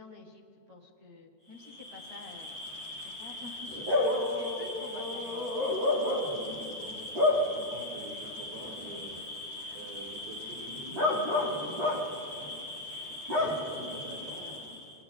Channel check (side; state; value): left; late; 13 ms